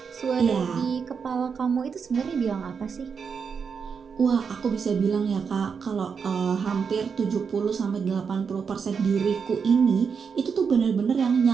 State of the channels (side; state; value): left; quieter; 6.1 dB